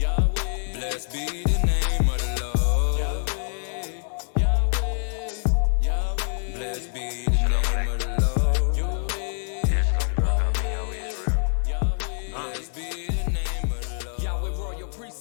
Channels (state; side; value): silent; right; digital silence